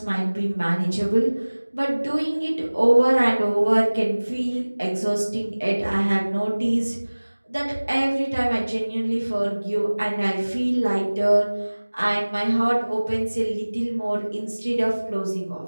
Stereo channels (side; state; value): both; inverted; correlation -1.00